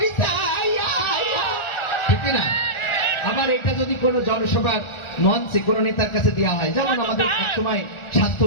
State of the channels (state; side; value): late; right; 1.4 ms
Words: ঠিক না? আবার এটা যদি কোনো জনসভার মঞ্চে কোনো নেতার কাছে দেওয়া হয়, যেমন আমাদের একসময়